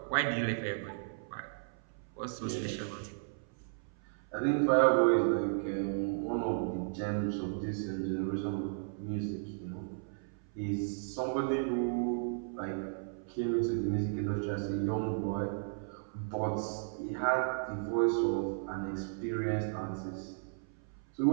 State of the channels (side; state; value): left; silent; 55 dB below the other